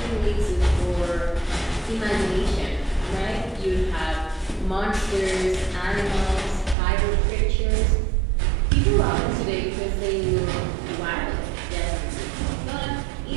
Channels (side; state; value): left; drops out; at 6.8 s